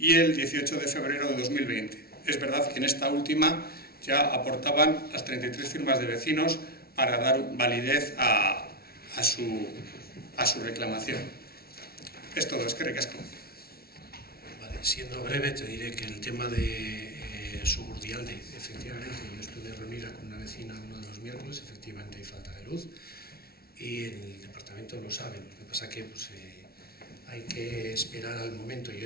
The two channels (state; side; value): late; right; 0.44 ms